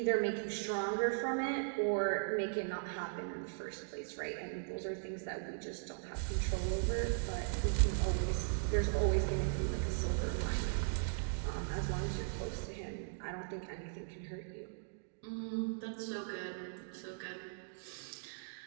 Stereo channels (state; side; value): silent; left; digital silence